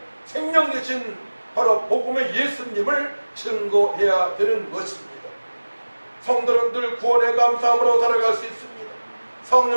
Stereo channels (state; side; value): inverted; both; correlation -1.00